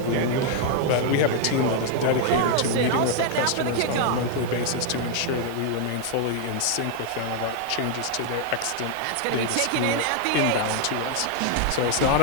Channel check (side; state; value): both; different; correlation 0.00